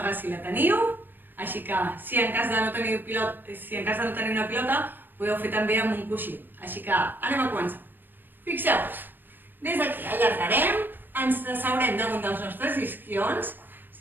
si la teniu, així que si en cas de no tenir una pilota, podeu fer també amb un coixí. Així que anem a començar. Fixeu-vos, des d'aquí allargarem, ens asseurem damunt dels nostres isquions,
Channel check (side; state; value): left; late; 0.093 ms